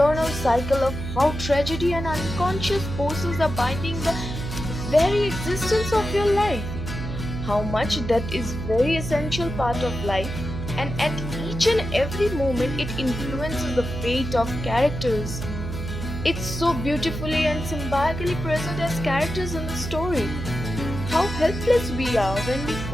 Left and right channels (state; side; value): noise; right; hum, 6 dB below the sound